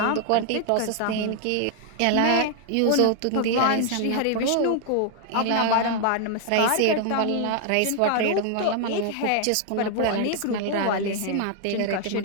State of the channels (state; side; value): different; both; correlation 0.00